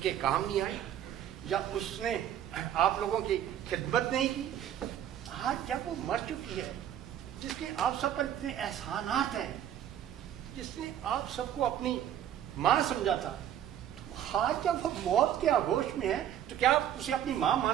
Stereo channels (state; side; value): quieter; left; 10.6 dB